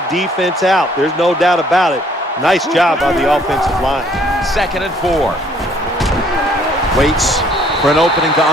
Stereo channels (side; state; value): both; normal; correlation 0.62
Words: defense out. There's no doubt about it. Nice job by the offensive line. 2nd and 4. Waits for an opening to